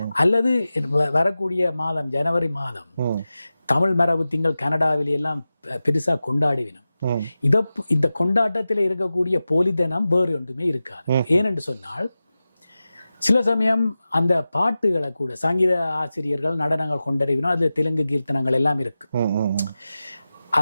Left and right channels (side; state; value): both; inverted; correlation -0.95